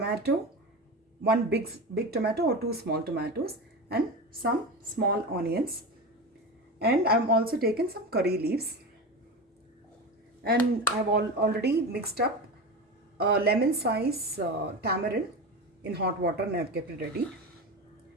one big tomato or 2 small tomatoes, and some small onions. And I've also taken some curry leaves. And I've already mixed up a lemon size tamarind in hot water and I've kept it ready.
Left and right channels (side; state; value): both; normal; correlation 0.24